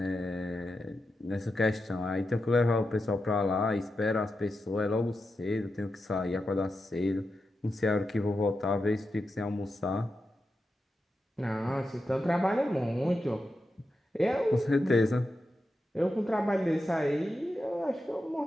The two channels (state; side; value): normal; both; correlation 0.89